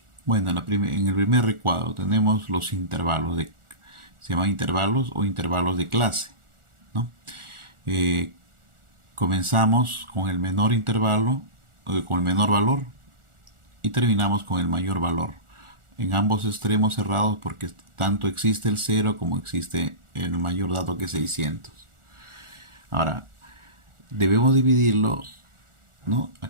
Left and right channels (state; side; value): late; left; 1.4 ms